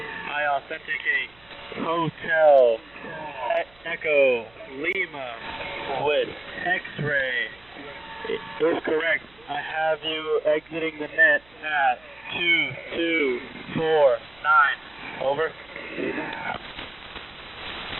I authenticate Hotel Echo Lima with X-ray. If correct, I have you exiting the net at 2249. Over.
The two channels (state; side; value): noise; right; hum, 29 dB below the sound